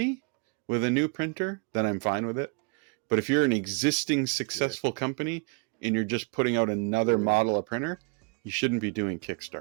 with a new printer, then I'm fine with it. But if you're an existing successful company and you're just putting out another model of printer, you shouldn't be doing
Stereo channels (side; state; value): left; quieter; 32.4 dB